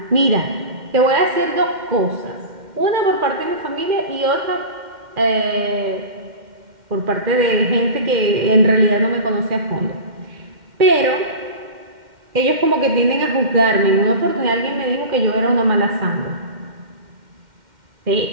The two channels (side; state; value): left; late; 2.1 ms